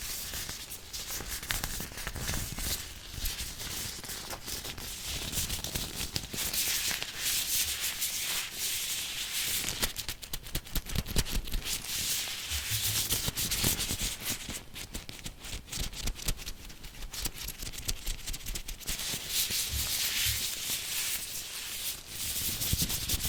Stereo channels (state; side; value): identical; both; correlation 1.00